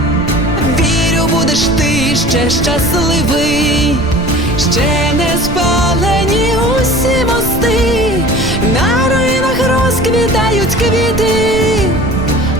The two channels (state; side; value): noise; right; rumble, 8 dB below the sound